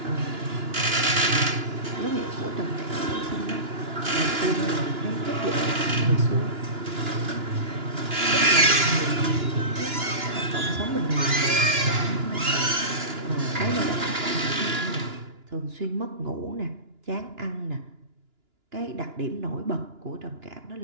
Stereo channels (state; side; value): late; left; 2.9 ms